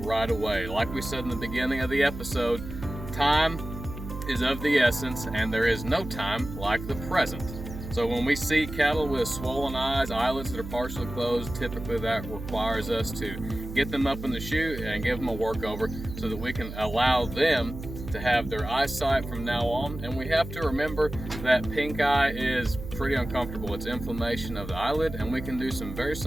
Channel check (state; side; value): noise; right; hum, 9 dB below the sound